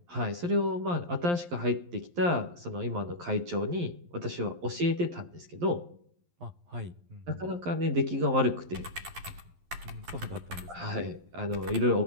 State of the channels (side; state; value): left; late; 11 ms